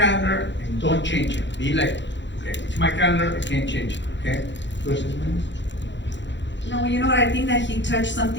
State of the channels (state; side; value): late; right; 0.53 ms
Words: and don't change it. Be like, okay, it's my calendar, I can't change it, okay? No, you know what, I think that he touched